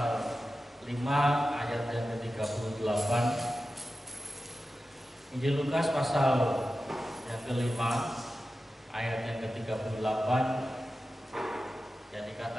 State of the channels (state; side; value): normal; both; correlation 0.93